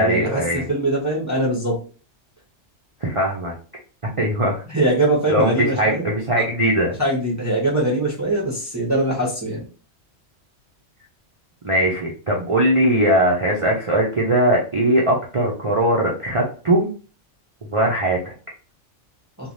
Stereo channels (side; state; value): both; normal; correlation -0.20